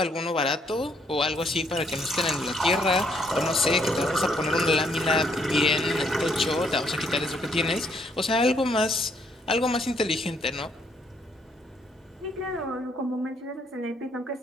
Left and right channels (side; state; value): both; normal; correlation 0.70